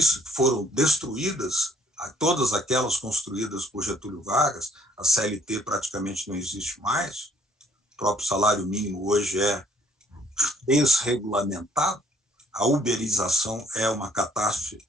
que foram destruídas, todas aquelas construídas por Getúlio Vargas. A CLT praticamente não existe mais, o próprio salário mínimo hoje é desregulamentado, a uberização é uma catástrofe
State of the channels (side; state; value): both; normal; correlation 0.64